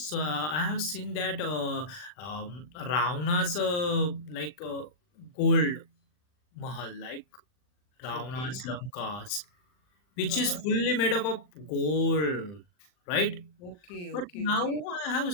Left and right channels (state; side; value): late; right; 39 ms